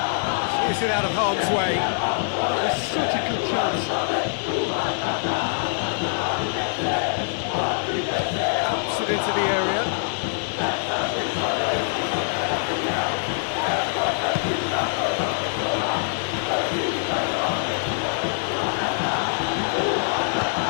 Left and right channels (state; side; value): silent; right; digital silence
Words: Is it out of harm's way? It's such a good chance. Puts it into the area.